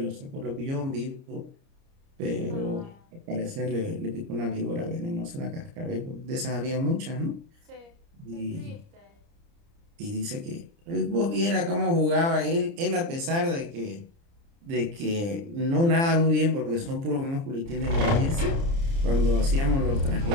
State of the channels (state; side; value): late; left; 30 ms